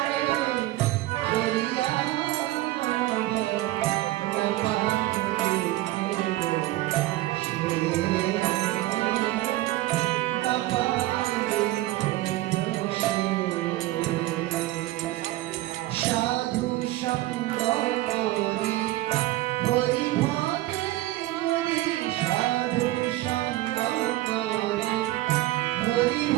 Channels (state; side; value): quieter; left; 17.1 dB